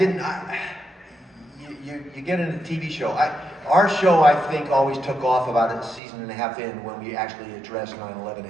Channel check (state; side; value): drops out; left; at 6.0 s